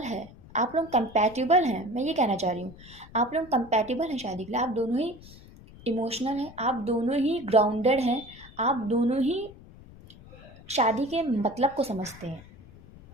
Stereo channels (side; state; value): left; noise; rumble, 20 dB below the sound